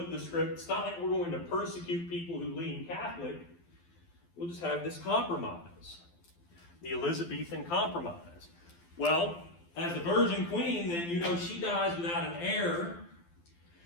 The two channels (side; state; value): right; late; 12 ms